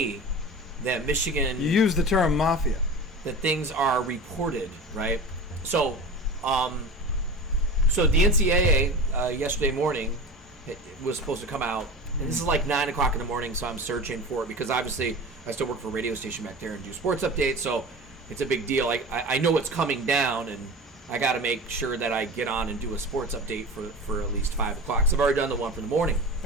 that Michigan, You use the term mafia. that things are reported, right? So, so the NCAA yesterday morning it was supposed to come out, and this is like 9 o'clock in the morning, so I'm searching for it because obviously I still work for a radio station back there and do sports updates, so it's a big deal. I know it's coming down, and I got to make sure that I get on and do a sports update for at least 5 o'clock. So I've already done the one for the morning.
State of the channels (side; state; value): both; normal; correlation 0.33